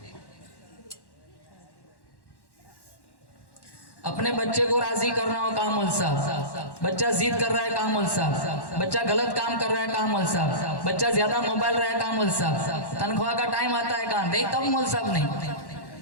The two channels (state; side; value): late; right; 1.1 ms